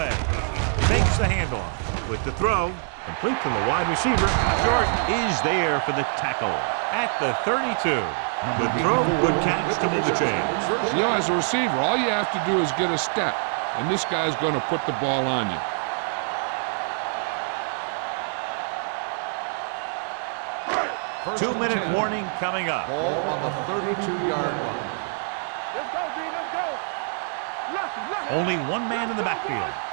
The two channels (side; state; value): left; silent; 62 dB below the other